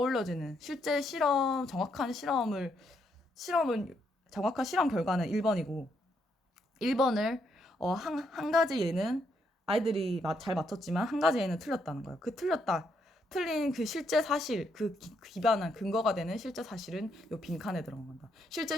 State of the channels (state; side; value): normal; both; correlation 0.76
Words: 실제 정확한 정확한 실험 결과는 1번이고 1번을 한 가지 예는 아이들이 잘 맞췄지만 한 가지 예는 틀렸다는 거예요. 틀린 그 실제 사실, 기반한 근거가 되는 실제 사실은 요 빈칸에 들어간 건다. 실제